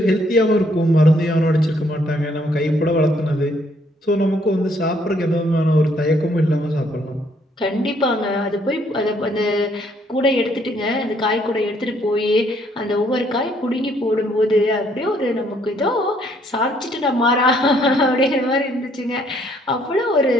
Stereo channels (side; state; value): both; normal; correlation 0.67